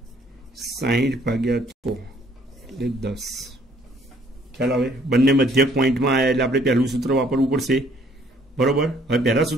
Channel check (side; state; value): both; normal; correlation 0.61